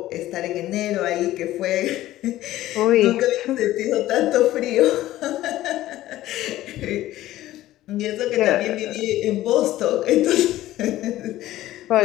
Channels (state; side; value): quieter; right; 15.0 dB